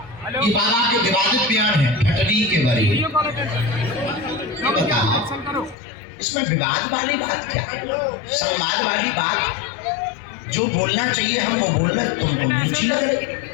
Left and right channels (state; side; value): drops out; right; at 5.8 s